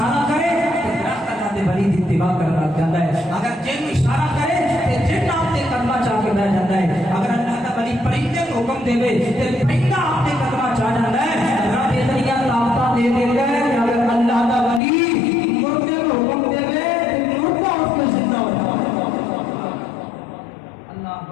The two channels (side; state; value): right; drops out; at 14.8 s